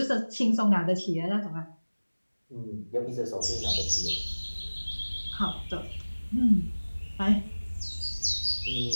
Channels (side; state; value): both; inverted; correlation -1.00